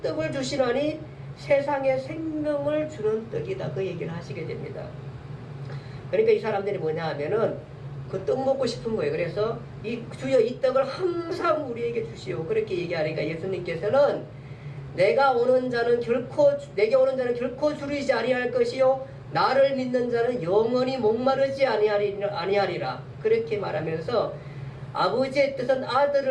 떡을 주시나니 세상에 생명을 주는 떡이다. 그 얘기를 하시게 됩니다. 그러니까 이 사람들이 뭐냐 하면은 그 떡 먹고 싶은 거예요. 그래서 주여 이 떡을 항상 우리에게 주시오. 그렇게 얘기하니까 예수님께서는 내게 오는 자는 결코 줄이지 아니할 것이요 나를 믿는 자는 영원히 목마르지 아니하리라. 그렇게 말하면서 아버지의 뜻은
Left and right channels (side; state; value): both; identical; correlation 1.00